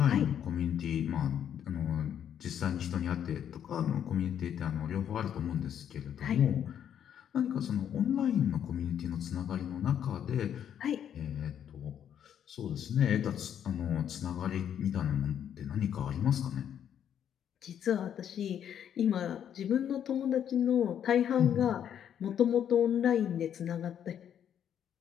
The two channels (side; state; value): right; quieter; 9.3 dB